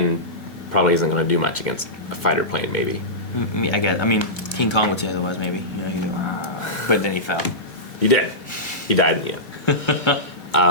probably isn't going to do much against a fighter plane, maybe. I mean, I guess. I mean, King Kong would say otherwise, maybe. You know, but then he fell. He did. He died in the end.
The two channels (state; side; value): late; right; 2.5 ms